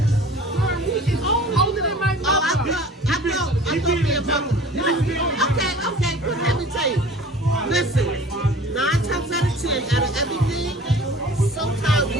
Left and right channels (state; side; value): normal; both; correlation 0.45